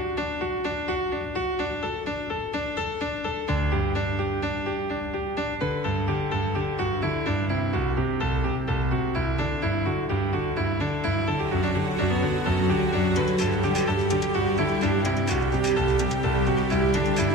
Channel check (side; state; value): both; normal; correlation 0.47